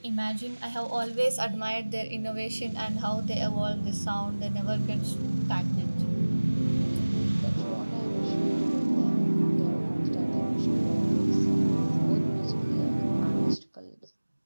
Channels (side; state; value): both; inverted; correlation -1.00